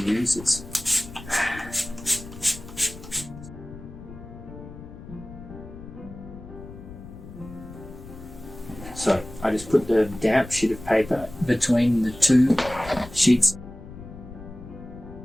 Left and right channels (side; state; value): left; noise; rumble, 15 dB below the sound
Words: So I just put the damp sheet of paper between the two sheets.